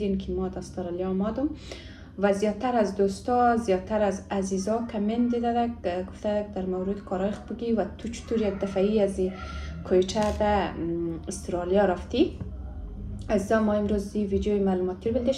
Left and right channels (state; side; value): identical; both; correlation 1.00